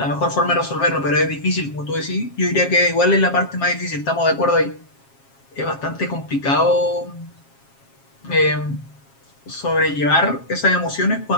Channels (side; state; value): right; late; 7.4 ms